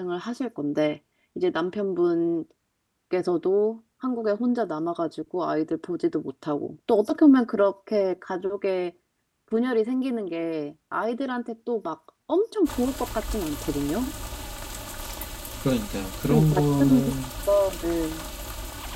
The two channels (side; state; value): both; identical; correlation 1.00